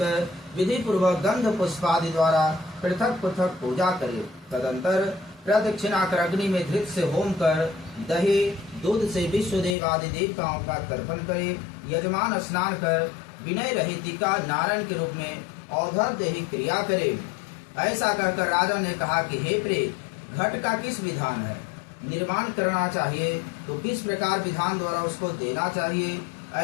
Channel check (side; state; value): right; drops out; at 9.8 s